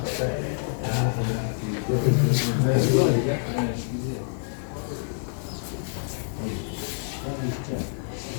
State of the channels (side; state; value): right; silent; digital silence